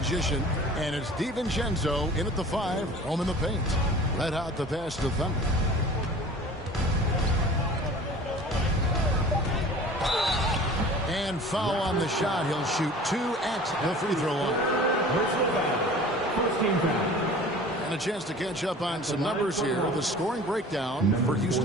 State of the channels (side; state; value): both; normal; correlation 0.43